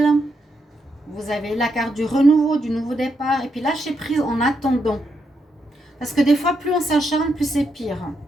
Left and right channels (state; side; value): normal; both; correlation 0.80